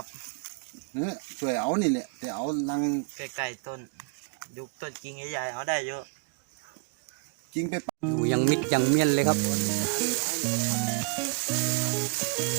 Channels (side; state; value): left; quieter; 37.1 dB